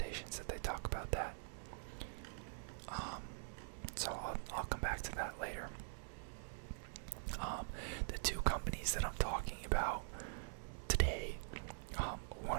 that they talk about that. So I'll come back to that later. The two companies that I'm talking about today,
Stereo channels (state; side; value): silent; left; digital silence